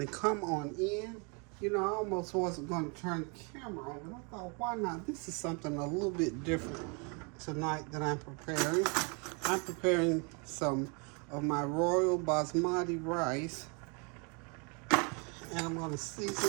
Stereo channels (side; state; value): left; quieter; 34.0 dB